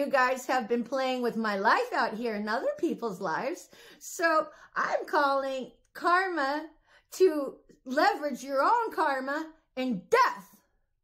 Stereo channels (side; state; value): both; identical; correlation 1.00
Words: guys have been playing with my life out here in other people's lives. So I'm calling karma to leverage your own karma in death.